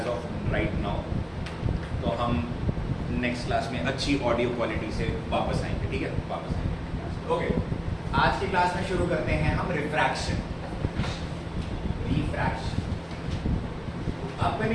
of right now. तो हम next class में अच्छी ऑडियो क्वालिटी से वापस आएंगे, ठीक है? वापस आएंगे। ओके, आज की क्लास में शुरू करते हैं हम रिफ्रैक्शन।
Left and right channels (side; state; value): both; identical; correlation 1.00